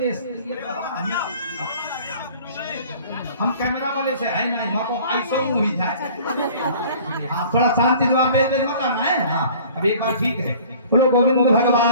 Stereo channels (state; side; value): inverted; both; correlation -0.48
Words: हम कैमरा वाले से है नहीं, माँ को ऐसा ही जाए। हाँ थोड़ा शांति से बेच मत करना है। हाँ अब एक बार ठीक है, बोलो गोविंद